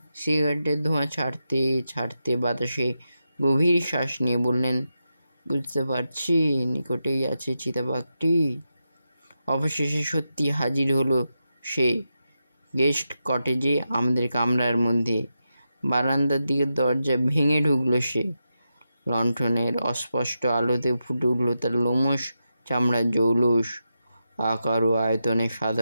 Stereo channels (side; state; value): both; inverted; correlation -0.88